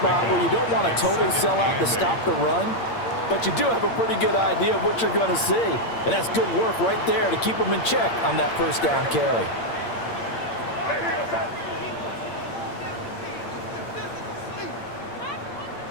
where you don't want to totally sell out to stop the run, but you do have a pretty good idea of what you're going to see. And that's good work right there to keep them in check on that first down carry.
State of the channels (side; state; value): right; late; 8.7 ms